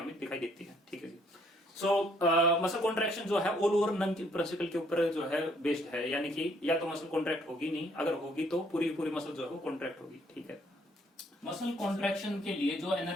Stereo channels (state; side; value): normal; both; correlation 0.66